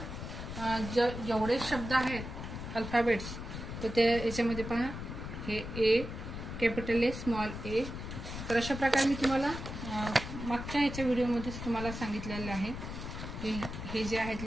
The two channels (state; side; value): noise; left; rumble, 7 dB below the sound